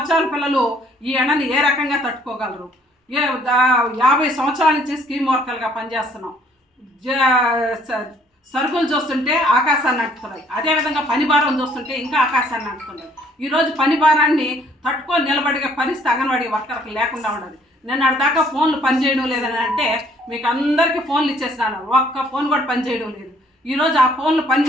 పిల్లలు ఈ ఎండని ఏ రకంగా తట్టుకోగలరు? 50 సంవత్సరాల నుంచి స్కీమ్ వర్కర్లుగా పనిచేస్తున్నాం. సరుకులు చూస్తుంటే ఆకాశాన్ని అంటుతున్నాయి. అదేవిధంగా పని భారం చూస్తుంటే ఇంకా ఆకాశాన్ని అంటుతున్నాయి. ఈరోజు పని భారాన్ని తట్టుకొని నిలబడిగే పరిస్థితి అంగన్వాడీ వర్కర్కి లేకుండా ఉండదు. నేను దాకా ఫోన్లు పనిచేయడం లేదని అంటే మీకు అందరికీ ఫోన్లు ఇచ్చేసినాను, ఒక్క ఫోన్ కూడా పనిచేయడం లేదు. ఈరోజు ఆ ఫోన్లు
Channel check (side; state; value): both; normal; correlation 0.62